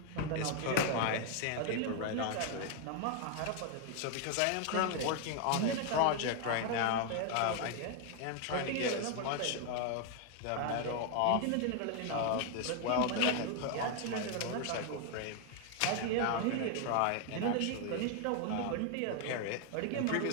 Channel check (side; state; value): both; different; correlation 0.01